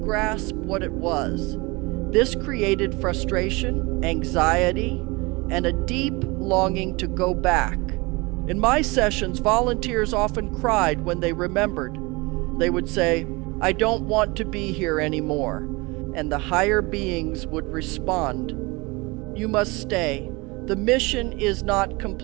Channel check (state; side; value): quieter; left; 25.1 dB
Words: grasp what it was. This created frustration, anxiety, and a deep longing to go back. In my sessions, volunteers often cried when they remembered. They would say, "I don't want to be here anymore." And the higher beings would respond, "You must stay. The mission is not